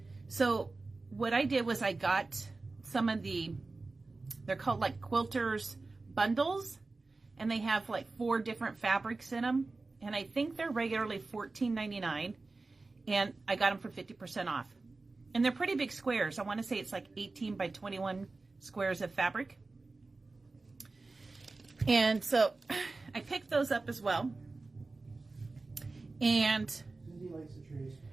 So what I did was I got some of they're called like quilters bundles, and they have like 4 different fabrics in them. And I think they're regularly $14.99, and I got them for 50% off. And they're pretty big squares. I want to say it's like 18 by 21 squares of fabric. And so I picked those up as well. And Cindy likes the trees.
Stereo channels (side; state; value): left; quieter; 3.6 dB